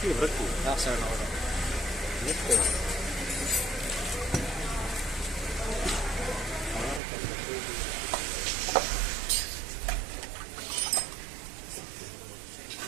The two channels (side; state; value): left; drops out; at 7.0 s